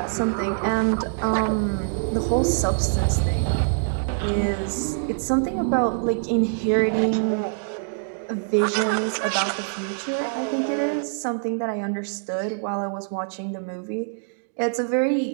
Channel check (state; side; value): silent; left; digital silence